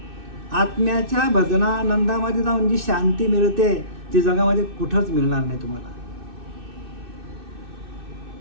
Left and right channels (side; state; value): left; late; 2.6 ms